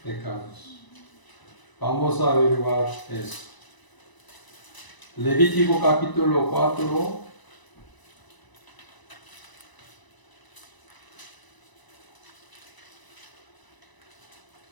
pecados. Vamos a averiguar eso. Levítico capítulo 4.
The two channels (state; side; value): late; right; 1.0 ms